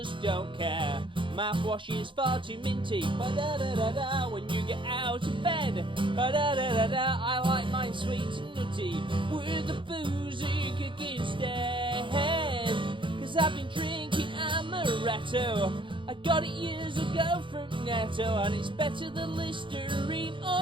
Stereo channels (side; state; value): left; late; 0.24 ms